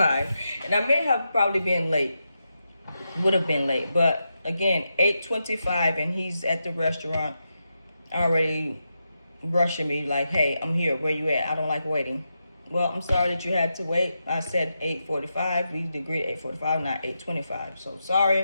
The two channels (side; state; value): both; inverted; correlation -0.87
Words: and I may have probably been late. Would have been late, but again, 8:25, and he's at the restaurant already rushing me like, "Hey, I'm here. Where you at? I don't like waiting." Well, I'm sorry that you had to wait. I said 8:45. We agreed 8:45, not 8:25. So